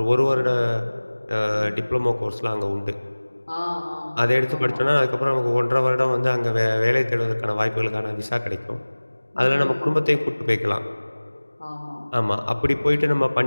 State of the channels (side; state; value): both; inverted; correlation -1.00